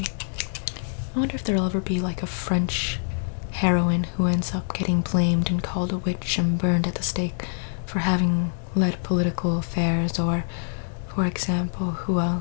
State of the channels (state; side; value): silent; right; digital silence